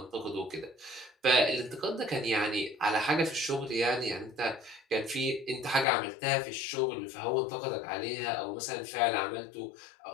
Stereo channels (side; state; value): right; drops out; at 5.9 s